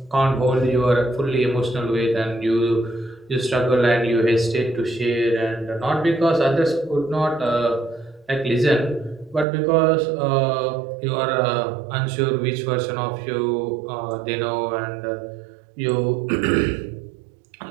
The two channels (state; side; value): drops out; left; at 9.5 s